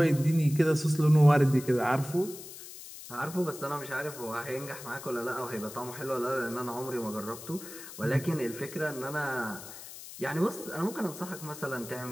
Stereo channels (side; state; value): left; noise; hiss, 14 dB below the sound